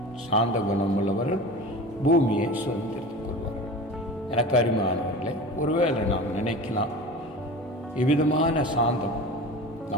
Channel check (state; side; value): normal; both; correlation 0.34